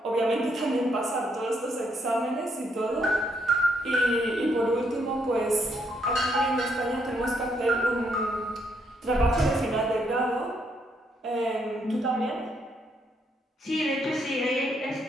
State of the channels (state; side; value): normal; both; correlation 0.74